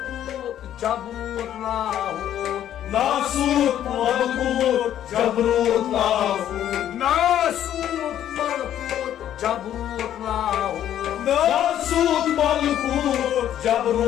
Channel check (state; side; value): quieter; right; 11.1 dB